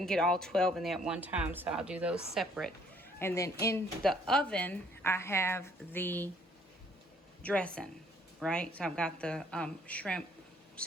get all 12 in there at one time, so I'll do those separate. And then in the oven, I have the dressing, right? So I've got the shrimp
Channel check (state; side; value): normal; both; correlation 0.62